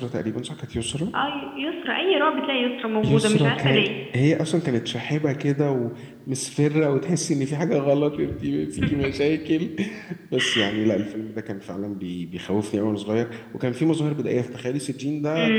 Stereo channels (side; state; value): both; identical; correlation 1.00